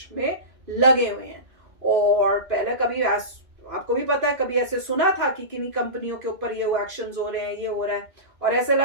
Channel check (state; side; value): late; left; 2.5 ms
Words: में लगे हुए हैं। और पहले कभी आपको भी पता है, कभी ऐसे सुना था कि किन्हीं कंपनियों के ऊपर ये एक्शंस हो रहे हैं, ये हो रहा है। और ऐसे लग